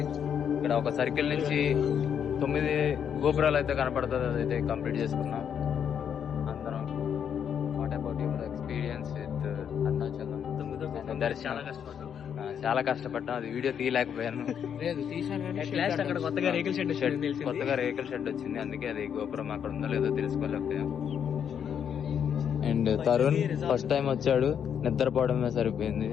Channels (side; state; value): right; quieter; 8.2 dB